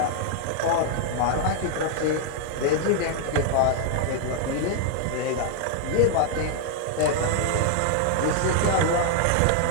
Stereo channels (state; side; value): different; both; correlation 0.00